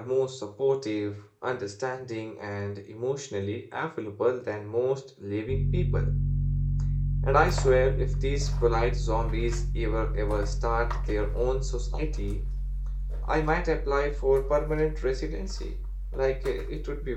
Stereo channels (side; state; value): both; identical; correlation 1.00